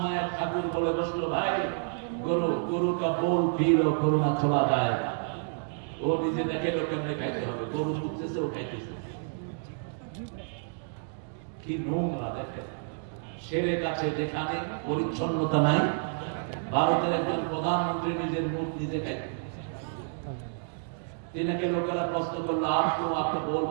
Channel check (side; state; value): left; silent; digital silence